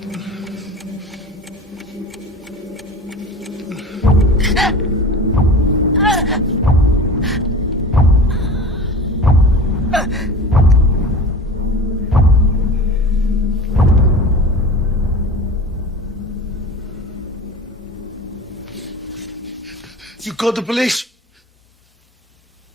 You called the police?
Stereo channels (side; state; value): both; normal; correlation 0.35